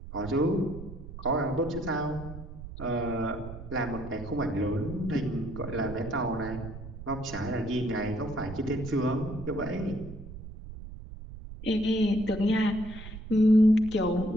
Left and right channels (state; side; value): noise; right; rumble, 12 dB below the sound